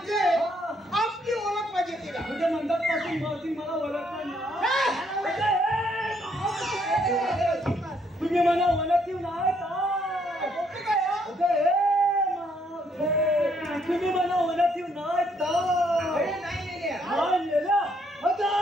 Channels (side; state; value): both; normal; correlation 0.70